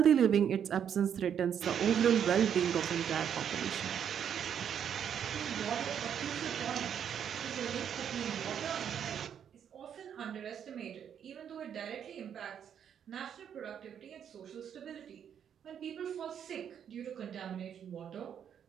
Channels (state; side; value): quieter; left; 8.6 dB